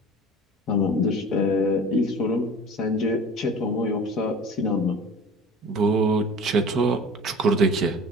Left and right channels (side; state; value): both; normal; correlation 0.41